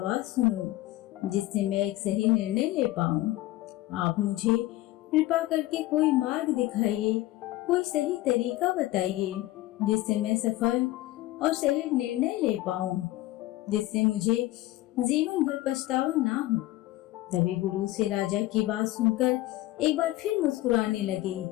सुनूं जिससे मैं एक सही निर्णय ले पाऊँ। आप मुझे कृपा करके कोई मार्ग दिखाइए, कोई सही तरीका बताइए जिससे मैं सफल और सही निर्णय ले पाऊँ, जिससे मुझे जीवन भर पछतावा ना हो। तभी गुरु से राजा की बात सुनकर एक बार फिर मुस्कुराने लगे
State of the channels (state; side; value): quieter; right; 17.0 dB